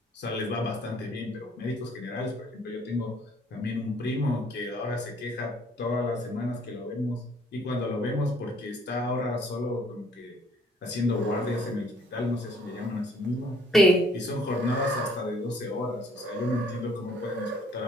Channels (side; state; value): both; normal; correlation 0.60